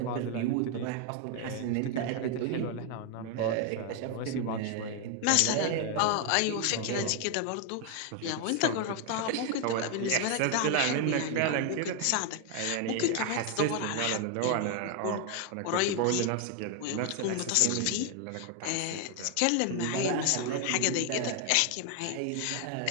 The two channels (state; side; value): different; both; correlation 0.01